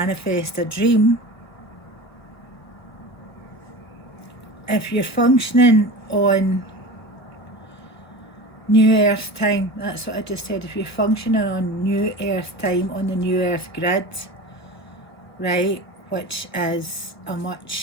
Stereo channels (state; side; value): late; right; 1.1 ms